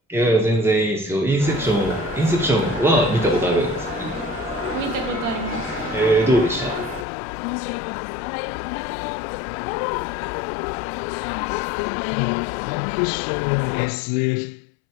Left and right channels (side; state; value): right; drops out; at 7.1 s